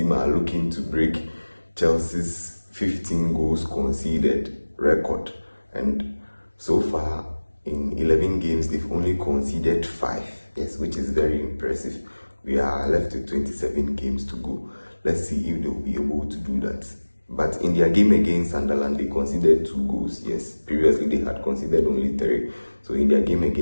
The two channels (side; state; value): both; inverted; correlation -1.00